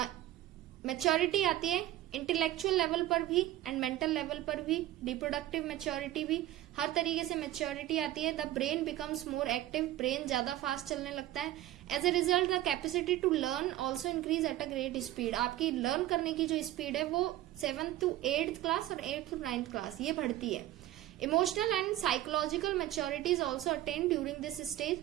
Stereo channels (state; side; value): quieter; left; 14.4 dB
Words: Maturity आती है intellectual level पर भी एंड मेंटल लेवल पर भी, reproductive maturity भी, हर तरीके से मैच्योरिटी आती है. The brain becomes more active. Brain ज्यादा फास्ट चलने लगता है. As a result the capacity to learn also increase at a great speed. आपकी लर्न करने की जो स्पीड है वो 7th to 8th क्लास और 8th to 9th क्लास ये बढ़ती है. Emotional and psychological maturity is also attain during this stage.